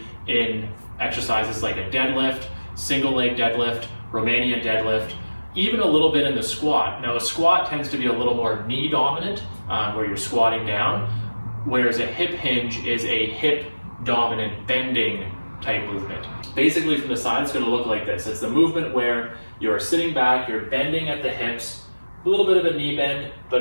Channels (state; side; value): inverted; both; correlation -1.00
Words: in exercises like a deadlift, single leg deadlift, Romanian deadlift, even a little bit in the squat. Now a squat tends to be a little more knee dominant, where you're squatting down, whereas a hip hinge is a hip dominant bending type movement. Basically from the side it's going to look like this. It's the movement where you're sitting back, you're bending at the hips, a little bit of a knee bend,